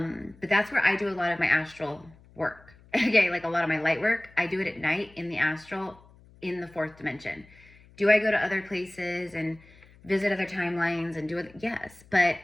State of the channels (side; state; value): left; noise; hum, 26 dB below the sound